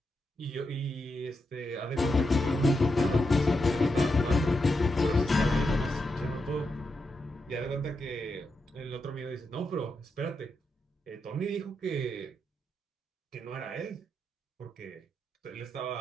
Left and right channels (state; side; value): normal; both; correlation 0.85